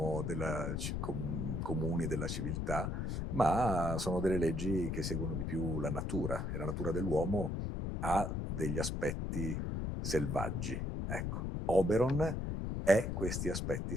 comuni della civiltà, ma sono delle leggi che seguono di più la natura, e la natura dell'uomo ha degli aspetti selvaggi. Ecco, Oberon è questi aspetti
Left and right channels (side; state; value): left; noise; rumble, 2 dB below the sound